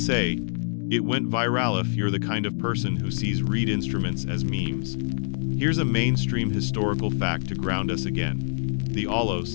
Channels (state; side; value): silent; right; digital silence